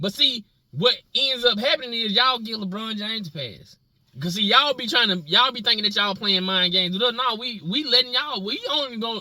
see, what ends up happening is y'all give LeBron James a pass. Cause see, y'all be thinking that y'all playing mind games with us. No, we letting y'all.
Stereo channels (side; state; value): both; identical; correlation 1.00